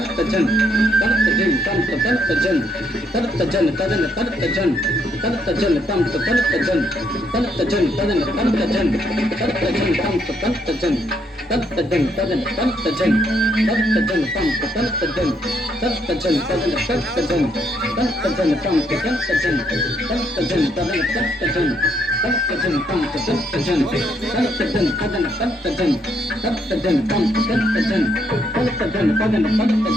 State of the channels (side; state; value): both; normal; correlation 0.73